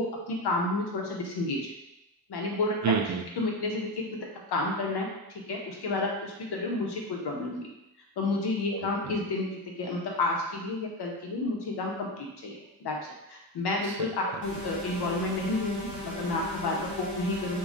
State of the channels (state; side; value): normal; both; correlation 0.16